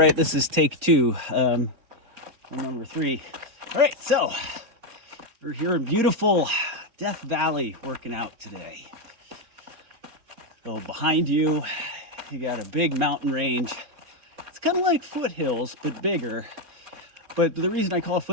this is take two, number 3. All right, so we're here in beautiful Death Valley working out today. So behind you, you got a big mountain range. It's kind of like foothills, but bigger. But the reason I call it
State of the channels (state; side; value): late; left; 4.3 ms